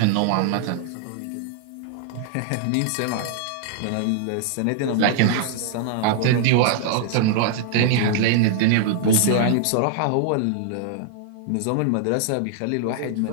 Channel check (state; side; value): different; both; correlation -0.01